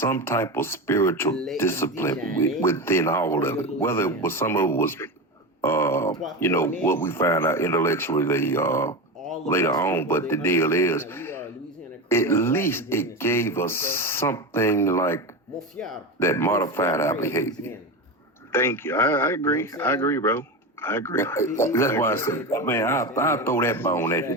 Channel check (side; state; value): both; normal; correlation 0.20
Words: type of spiritual discipline within all of it. Whether it was some of it was, what we found out intellectually later on. But the deal is, at least it gave us something like that modified our behavior. Thank you. I agree. I agree, bro. I agree. That's why I said, man, I'll throw that bone at